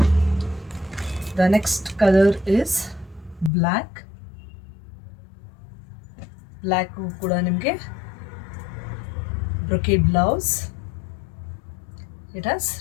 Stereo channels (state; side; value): drops out; right; at 3.5 s